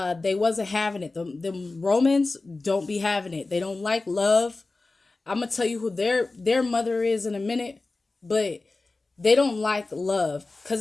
they wasn't having it. The Romans don't be having it. They don't like love. I'm gonna tell you who their mother is in a minute, but they don't like love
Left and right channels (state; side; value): quieter; right; 3.4 dB